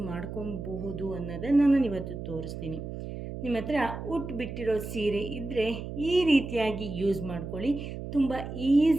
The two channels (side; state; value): right; noise; hum, 8 dB below the sound